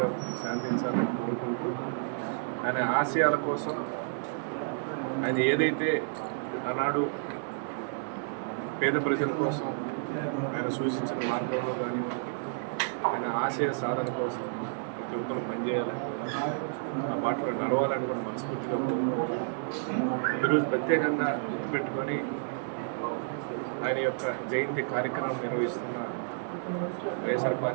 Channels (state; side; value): silent; left; 57 dB below the other